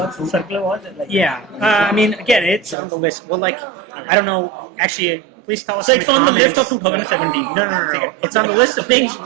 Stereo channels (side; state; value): left; drops out; at 2.8 s